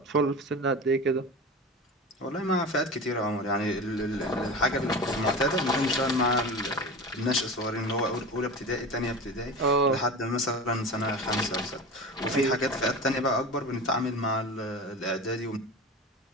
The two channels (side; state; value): both; normal; correlation 0.30